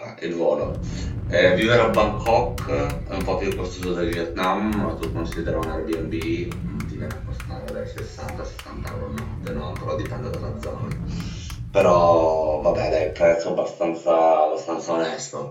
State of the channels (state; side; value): identical; both; correlation 1.00